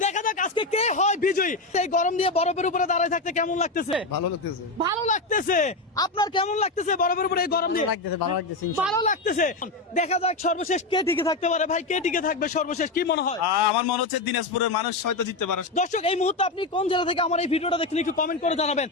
দেখা যাক আজকে কে হয় বিজয়ী। এই গরম দিয়ে বরফের উপরে দাঁড়ায় থাকতে কেমন লাগতেছে? ভালো লাগতেছে। ভালো লাগতেছে। আপনার কেমন লাগতেছে বরফের উপরে এই গরম দিয়ে? ভালো লাগতেছে। ভালো লাগতেছে। দেখা যাক সর্বশেষ কে টিকে থাকতে পারে। ভাই কে টিকে থাকবে সর্বশেষ, কি মনে হয়? আমার মনে হচ্ছে দিনাজপুরের মানুষ হয়তো জিততে পারে। দর্শক এই মুহূর্তে আপনি কোন জেলা থেকে আমার এই ভিডিওটা দেখছেন একটু কমেন্ট করে জানাবেন।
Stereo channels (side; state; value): right; quieter; 3.2 dB